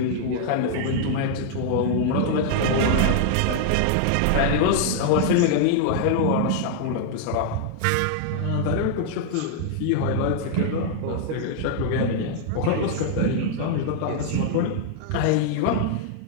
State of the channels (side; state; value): both; different; correlation -0.01